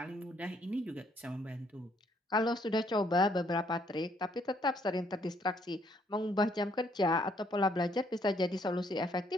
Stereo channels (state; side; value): normal; both; correlation 0.68